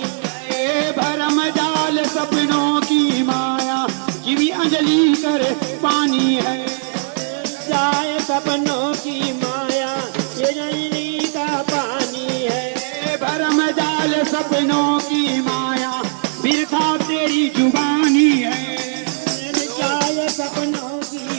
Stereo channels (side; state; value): left; silent; digital silence